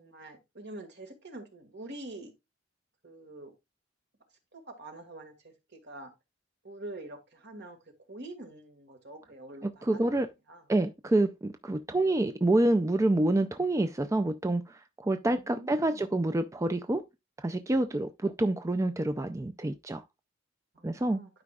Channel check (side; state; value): both; normal; correlation 0.87